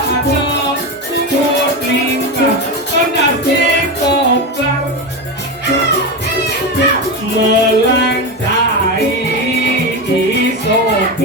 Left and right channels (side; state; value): both; normal; correlation 0.17